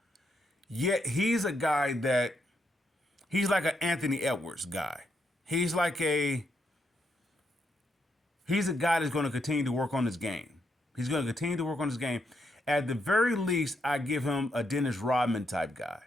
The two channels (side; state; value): both; normal; correlation 0.79